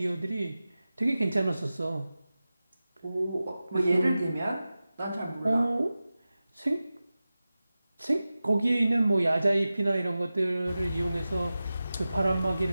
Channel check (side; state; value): both; inverted; correlation -0.95